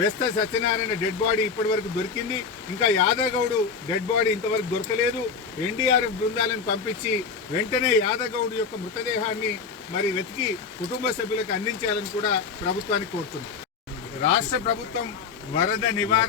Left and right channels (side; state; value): right; quieter; 5.4 dB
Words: సత్యనారాయణ డెడ్ బాడీ ఇప్పటి వరకు దొరికింది. ఇంకా యాదగౌడు డెడ్ బాడీ ఇంతవరకు దొరకలేదు. ఎన్డీఆర్ఎఫ్ బృందాలను పంపించి వెంటనే యాదగౌడు యొక్క మృతదేహాన్ని మరి వెతికి కుటుంబ సభ్యులకు అందించాలని కూడా ప్రభుత్వాన్ని కోరుతుంది. రాష్ట్ర ప్రభుత్వం వరద